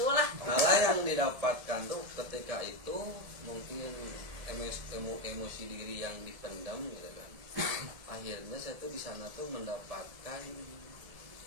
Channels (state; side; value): late; left; 1.7 ms